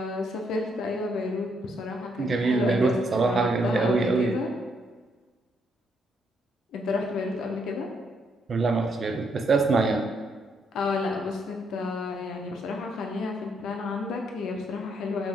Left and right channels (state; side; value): normal; both; correlation 0.74